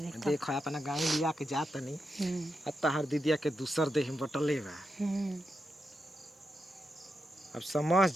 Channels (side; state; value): both; normal; correlation 0.86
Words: देखो। देख अपना गाँव लिया के जात नहीं। अब तहार दीदिया के दूसर देह में बटले बा। अब समझ